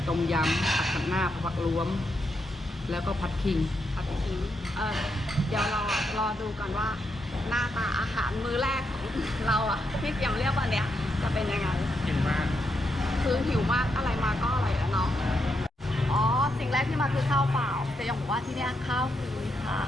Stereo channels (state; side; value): normal; both; correlation 0.82